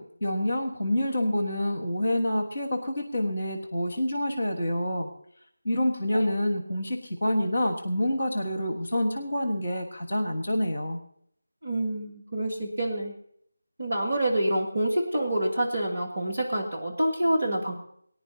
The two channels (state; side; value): inverted; both; correlation -0.93